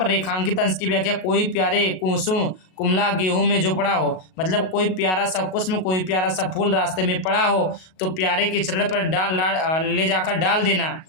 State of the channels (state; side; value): late; right; 38 ms